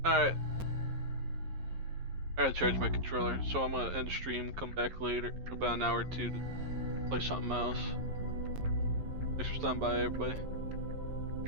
Alright. I gotta charge my controller, so I'm gonna end stream, come back later, about an hour or two to play something else. Thanks for stopping by, everybody.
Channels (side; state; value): left; late; 11 ms